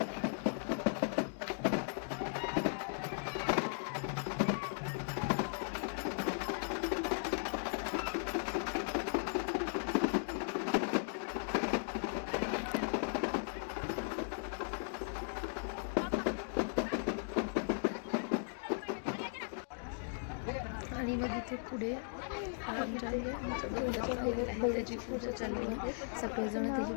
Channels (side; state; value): right; silent; digital silence